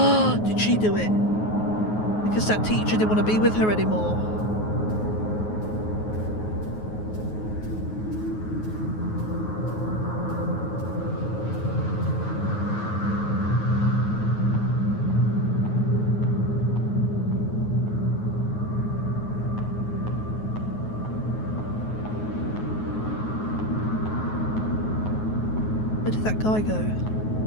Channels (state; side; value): late; right; 9.4 ms